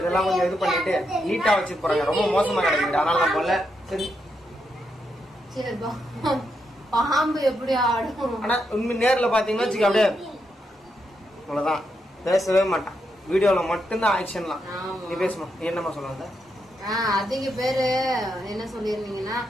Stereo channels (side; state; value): both; normal; correlation 0.82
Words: கொஞ்சம் இது பண்ணிட்டு நீட்டாக வச்சு போகிறாங்க. ரொம்ப மோசமாக கிடைக்குது, அதனால நான் போல. சரி, பாம்பு எப்படி ஆடும். ஆனால் உண்மை நேரில் பார்த்தீங்கன்னா வச்சுக்க அப்படியே அவ்வளோதான், பேசவே மாட்டான். வீடியோவில் மட்டும்தான் ஆக்ஷன்லாம். நீ பேசுமா, நீ என்னமா சொல்லுவாங்க? அதிக பேரு என்ன சொல்லிருந்தீங்கன்னா